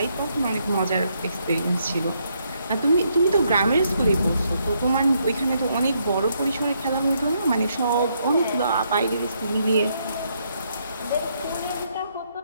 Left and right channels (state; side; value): inverted; both; correlation -0.75